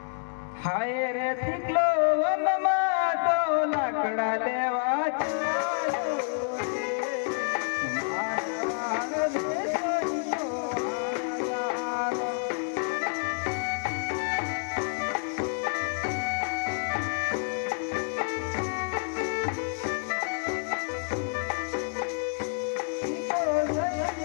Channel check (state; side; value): silent; right; 56 dB below the other